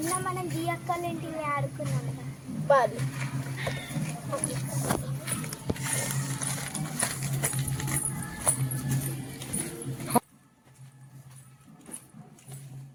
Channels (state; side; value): identical; both; correlation 1.00